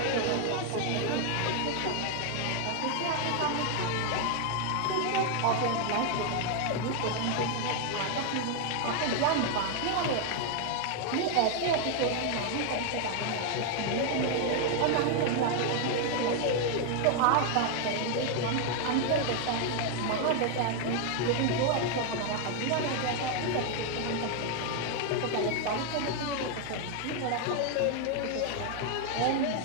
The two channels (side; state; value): both; different; correlation 0.01